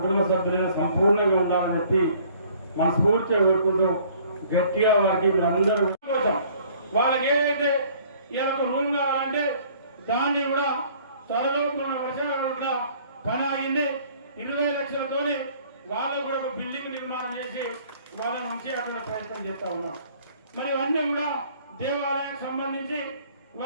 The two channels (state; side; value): inverted; both; correlation -0.56